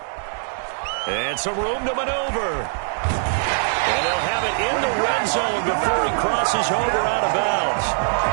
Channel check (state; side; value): silent; left; digital silence